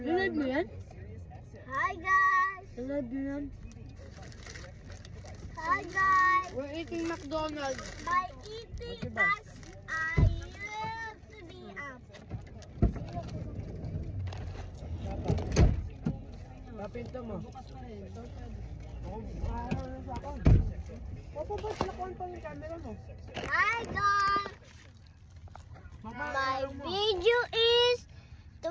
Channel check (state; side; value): identical; both; correlation 1.00